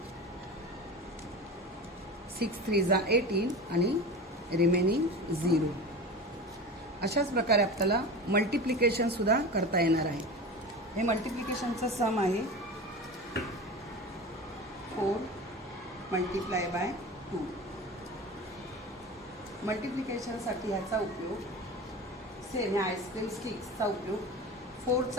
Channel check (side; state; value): both; normal; correlation 0.30